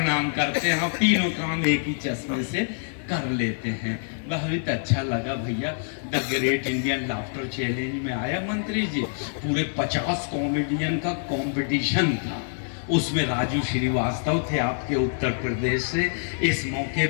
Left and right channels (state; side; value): silent; right; digital silence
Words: करते हैं, तीनों काम एक ही चश्मे से कर लेते हैं। बहुत अच्छा लगा भैया। The great Indian laughter challenge में आया मंत्री जी, पूरे 50 कॉमेडियन का कंपटीशन था, उसमें राजू श्रीवास्तव थे आपके उत्तर प्रदेश से। इस मौके